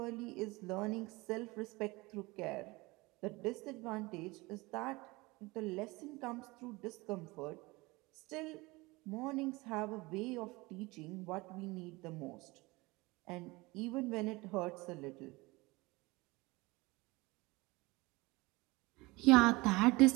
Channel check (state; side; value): quieter; left; 23.0 dB